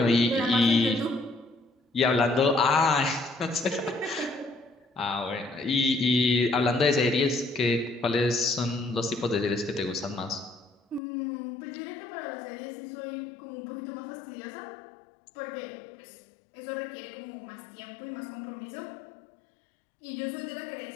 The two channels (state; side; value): drops out; right; at 11.0 s